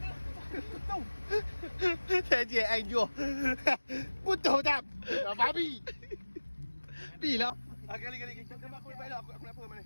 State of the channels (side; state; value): both; inverted; correlation -1.00